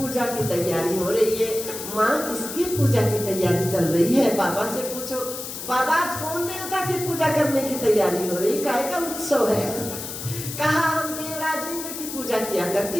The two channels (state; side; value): noise; left; hiss, 8 dB below the sound